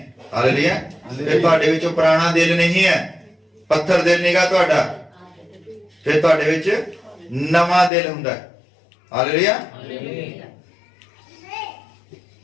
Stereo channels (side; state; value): right; drops out; at 7.9 s